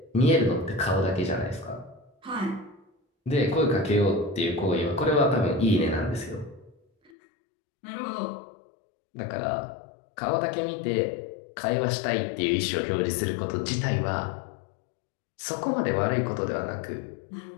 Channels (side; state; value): right; drops out; at 7.1 s